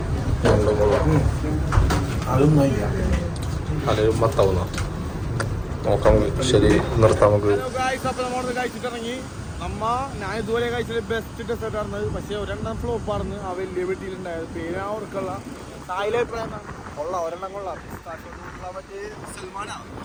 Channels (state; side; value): identical; both; correlation 1.00